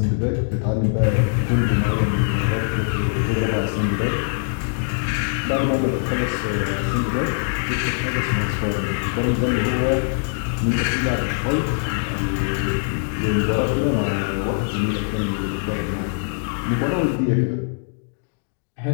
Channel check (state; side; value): silent; right; digital silence